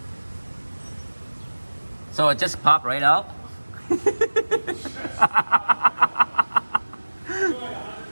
So it just popped right out.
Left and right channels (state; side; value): inverted; both; correlation -1.00